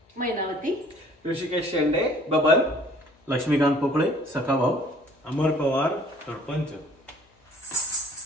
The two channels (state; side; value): normal; both; correlation 0.55